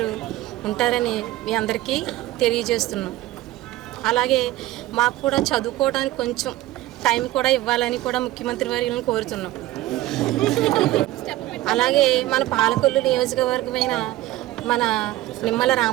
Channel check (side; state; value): left; quieter; 16.3 dB